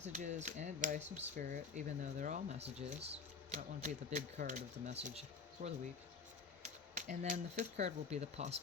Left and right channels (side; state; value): right; quieter; 5.0 dB